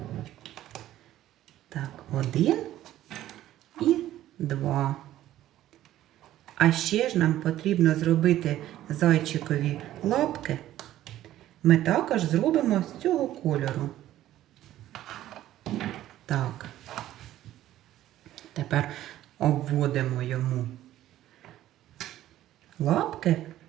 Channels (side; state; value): left; quieter; 13.5 dB